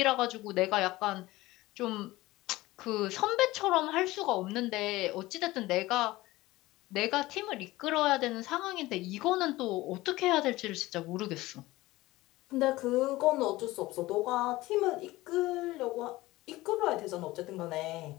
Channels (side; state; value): right; quieter; 18.6 dB